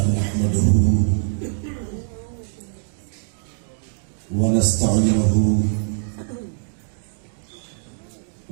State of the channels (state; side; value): silent; left; digital silence